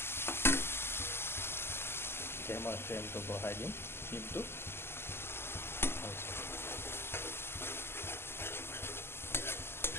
এতিয়া মই ফ্লেমটো বঢ়াই দিম, কিন্তু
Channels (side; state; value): right; late; 0.11 ms